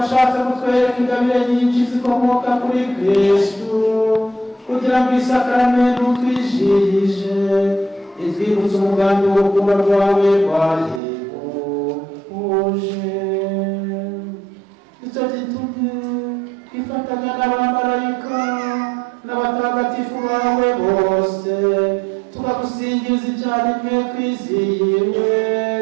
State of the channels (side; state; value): left; drops out; at 11.0 s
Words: kutwereka ingabire nyinshi zikomoka kuri Kristo kugira ngo isakaramentu twijihije itwibutse umugambi w'urukundo rwawe rwahebuje. Icyo gitumye twifatanya n'abamarayika n'abatagatifu bawe bose tukagusingiza icyarimwe twizihiwe